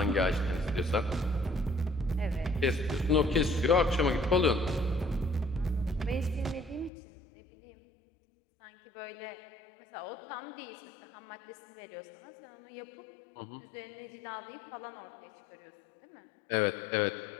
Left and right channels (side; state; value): right; drops out; at 6.9 s